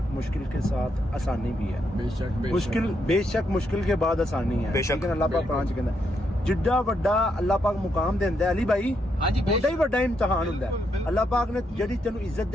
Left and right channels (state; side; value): normal; both; correlation 0.78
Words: मुश्किल के साथ आसानी भी है बेशक मुश्किल के बाद आसानी है बेशक। लेकिन अल्लाह पाक कुरान च कहंदा जिड्डा वड्डा अल्लाह पाक मुकाम देंदा है अली भाई ओडा ही वड्डा इम्तिहान हुंदा है। अल्लाह पाक ने जेडी तेनू इज्जत